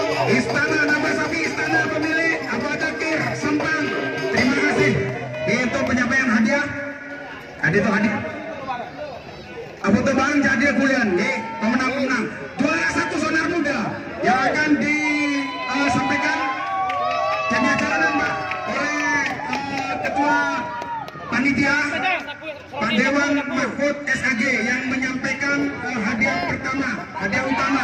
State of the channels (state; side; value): identical; both; correlation 1.00